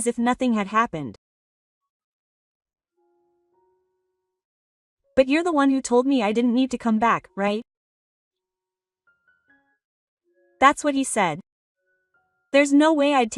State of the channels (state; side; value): identical; both; correlation 1.00